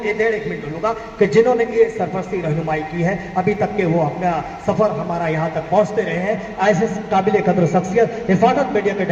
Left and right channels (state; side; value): identical; both; correlation 1.00